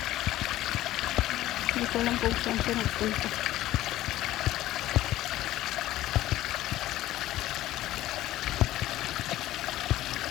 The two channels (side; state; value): right; quieter; 14.9 dB